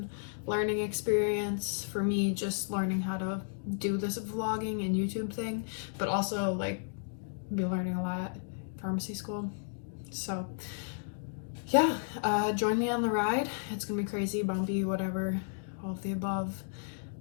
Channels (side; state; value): right; silent; digital silence